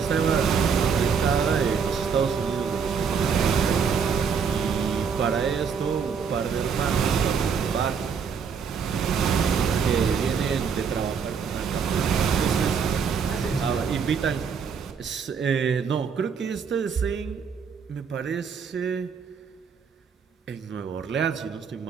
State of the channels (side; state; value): left; quieter; 6.4 dB